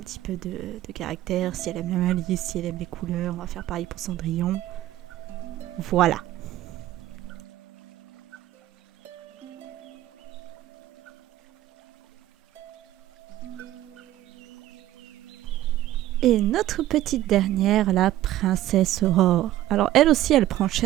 peu de caractère. Si elle aime la malice, si elle aime les couleurs, on va faire pareil pour Cendrillon. Voilà. Et notre petite dernière, la princesse Aurore. Alors, elle aussi, elle prend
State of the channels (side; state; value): left; quieter; 14.3 dB